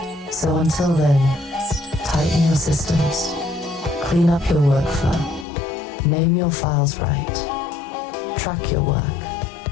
So until then, tighten your systems, clean up your workflow, name your files right, track your work,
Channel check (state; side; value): drops out; right; at 5.5 s